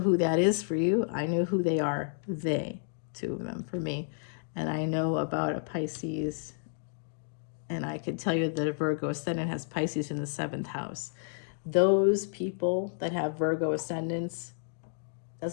who that is for you. I know who they are. They, two of them for me. And I know about a Pisces, and I could tell you that a Virgo Ascendant has Pisces in the 7th house. Those people that have Virgo Ascendants,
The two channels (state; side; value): silent; right; digital silence